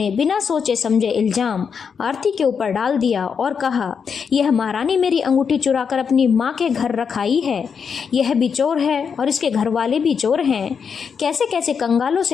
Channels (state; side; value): quieter; right; 6.4 dB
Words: बिना सोचे समझे इल्ज़ाम आरती के ऊपर डाल दिया और कहा, यह महारानी मेरी अंगूठी चुराकर अपनी माँ के घर रखाई है। यह भी चोर है और इसके घर वाले भी चोर हैं। कैसे कैसे कंगालों